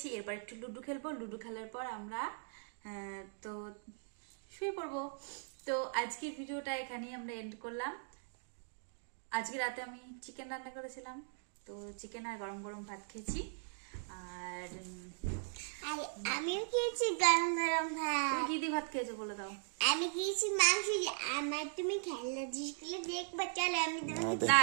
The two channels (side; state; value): left; silent; digital silence